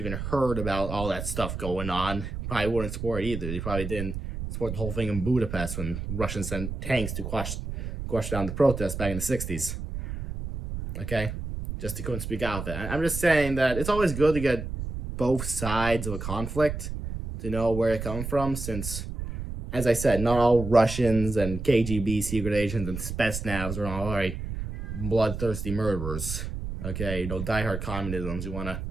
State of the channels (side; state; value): right; noise; rumble, 6 dB below the sound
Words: heard about all that stuff going on, probably wouldn't support it either. They probably didn't support the whole thing in Budapest when Russians sent tanks to quash down the protests back in the 60s. Okay? Just they couldn't speak out there. I'm just saying that it's always good to get both sides of a conflict to know where it comes from, since, as I said, not all Russians and KGB secret agents and Spetsnaz are all very bloodthirsty murderers. Okay, diehard communisms who want to,